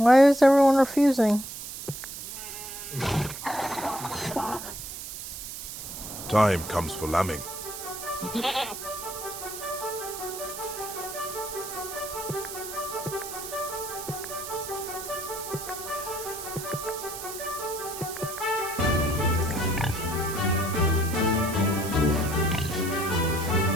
is everyone refusing? Time comes for lambing. But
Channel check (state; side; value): noise; right; hiss, 9 dB below the sound